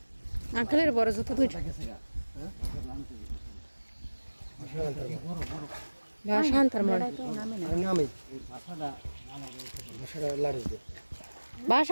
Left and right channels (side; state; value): both; inverted; correlation -1.00